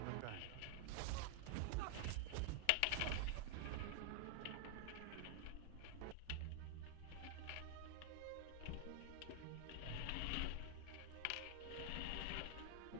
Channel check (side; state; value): both; different; correlation 0.00